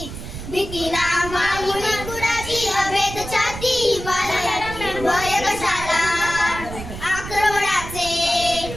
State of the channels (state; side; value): noise; right; rumble, 10 dB below the sound